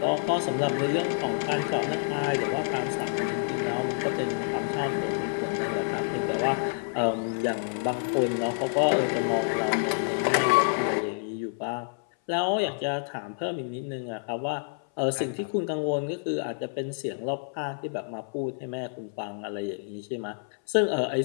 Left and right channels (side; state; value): right; silent; 59 dB below the other